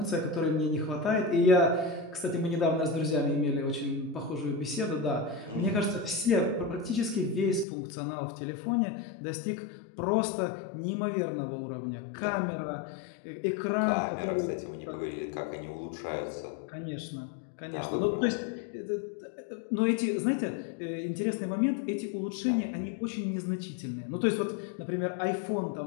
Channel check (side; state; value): right; drops out; at 7.7 s